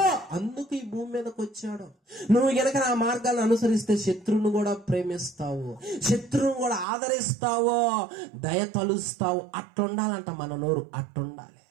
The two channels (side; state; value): left; drops out; at 6.9 s